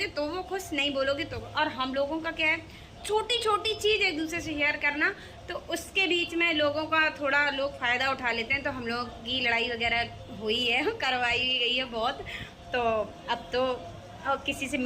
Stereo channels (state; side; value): identical; both; correlation 1.00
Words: तो वो खुश, नहीं बोलोगे तो। और हम लोगों का क्या है, छोटी छोटी चीज़ एक दूसरे से शेयर करना, तो उसके बीच में लोगों का थोड़ा लोग फ़ायदा उठा लेते हैं। तो हम लोग की लड़ाई वगैरह हुई है, करवाई भी गई है बहुत। तो अब तो किसी से